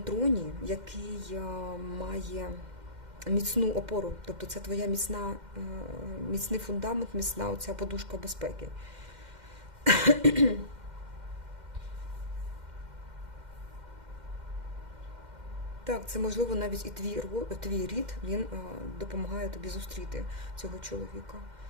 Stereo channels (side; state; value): left; late; 2.1 ms